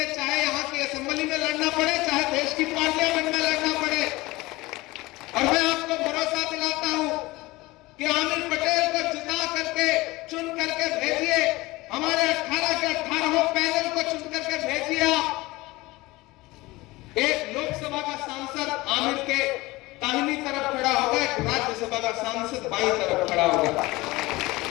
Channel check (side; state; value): right; quieter; 20.7 dB